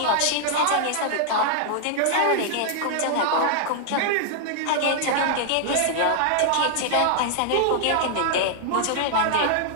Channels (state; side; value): different; both; correlation -0.01